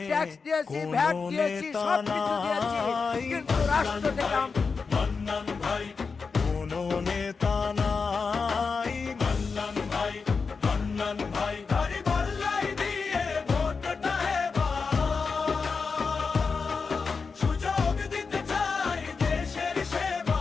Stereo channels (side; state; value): right; quieter; 4.9 dB